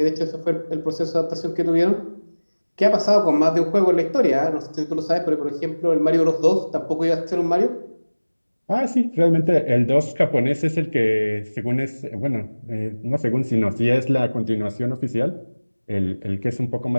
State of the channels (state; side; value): inverted; both; correlation -1.00